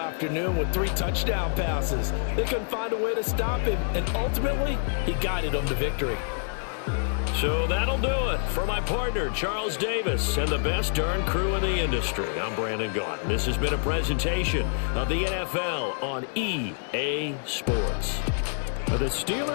with 3 touchdown passes. They couldn't find a way to stop him, and ultimately, he guided them to victory. So that'll do it for my partner, Charles Davis, and the best darn crew in the industry. I'm Brandon Gaughan. This has been a presentation of the NFL on EA Sports. The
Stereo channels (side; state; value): right; silent; 60 dB below the other